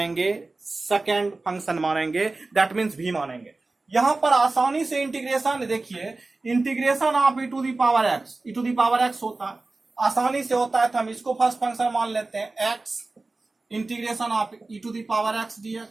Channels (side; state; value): left; quieter; 3.4 dB